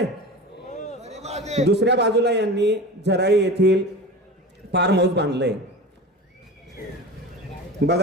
दुसऱ्या बाजूला यांनी झराळी येथील फार्म हाऊस बांधलंय.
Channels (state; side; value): normal; both; correlation 0.31